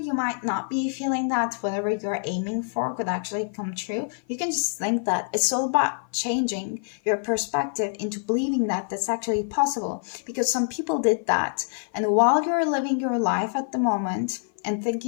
might not be feeling that whatever you're aiming for could actually come true, you can just think that it's all about changing your perspective into believing that that's actually possible. Because some people did that, and while you're living your life at the moment and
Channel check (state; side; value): silent; right; 55 dB below the other